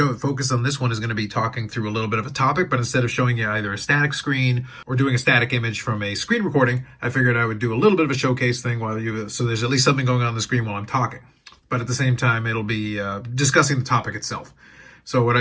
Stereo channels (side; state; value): both; identical; correlation 1.00